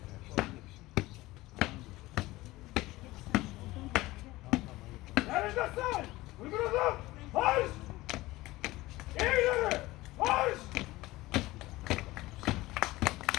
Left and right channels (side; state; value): right; quieter; 18.9 dB